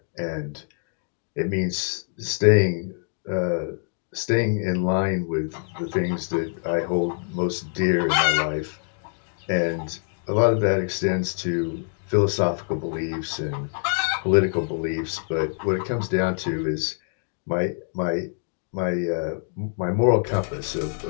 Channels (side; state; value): right; silent; 56 dB below the other